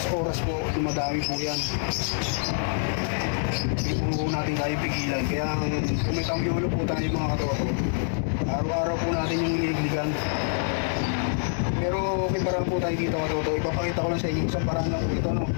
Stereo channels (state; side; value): silent; right; 57 dB below the other